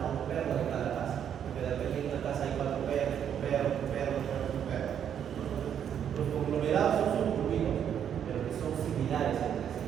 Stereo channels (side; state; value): left; quieter; 8.9 dB